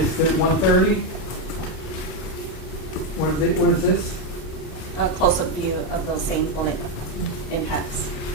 it 130? What is this? A close-up view of those same bullet impacts.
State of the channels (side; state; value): right; late; 29 ms